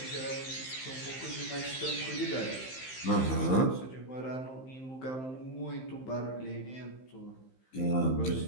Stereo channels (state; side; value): late; right; 15 ms